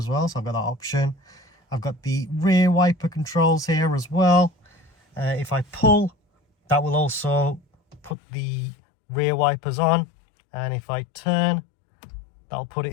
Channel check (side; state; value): right; drops out; at 8.2 s